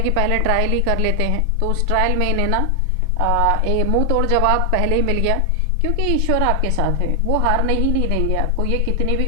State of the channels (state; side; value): different; both; correlation 0.00